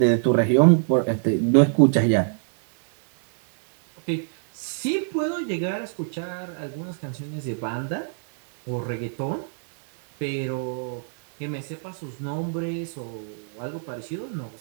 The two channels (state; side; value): silent; left; digital silence